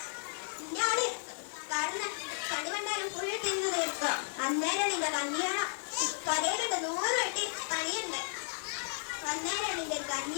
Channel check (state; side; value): silent; right; digital silence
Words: ഇന്ത്യാള് കാരണം കടുവണ്ടാലും ഫുൾ തിന്ന് തീർക്കുക അന്നേരം നിന്റെ കല്യാണം കരയിലുണ്ട് 100 വെട്ടി പണിയുണ്ട് അന്നേരം നിന്റെ